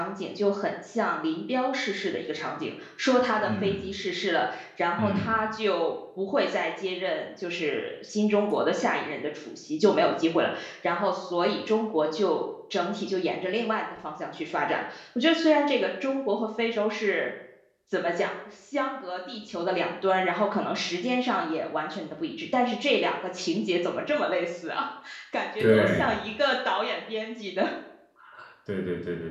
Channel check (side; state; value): both; identical; correlation 1.00